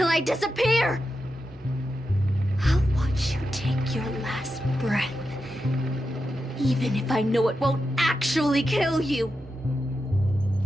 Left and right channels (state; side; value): normal; both; correlation 0.89